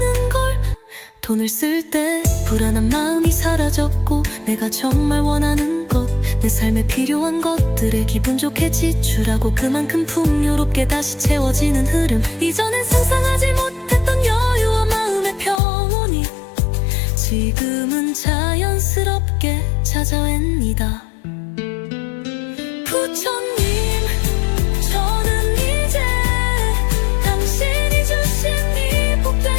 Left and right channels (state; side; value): drops out; right; at 15.6 s